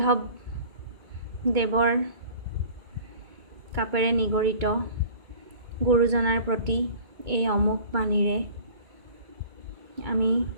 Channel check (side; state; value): left; late; 2.2 ms